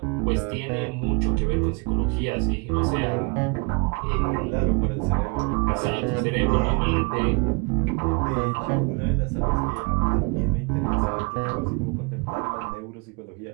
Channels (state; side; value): quieter; left; 31.7 dB